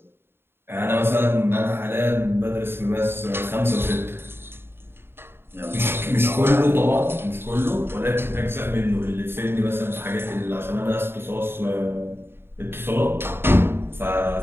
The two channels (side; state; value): left; late; 0.11 ms